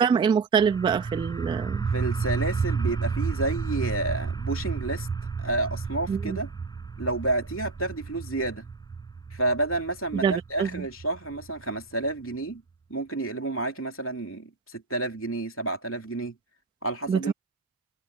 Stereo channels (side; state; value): left; quieter; 4.0 dB